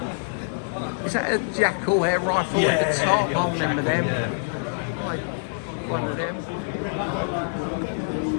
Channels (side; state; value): right; silent; 62 dB below the other